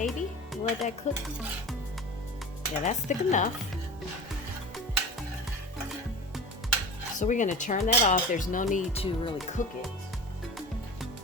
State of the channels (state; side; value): normal; both; correlation 0.33